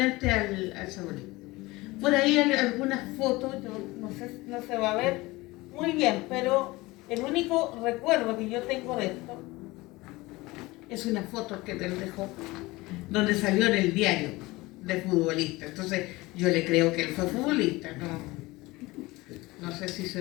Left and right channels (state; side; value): quieter; right; 21.1 dB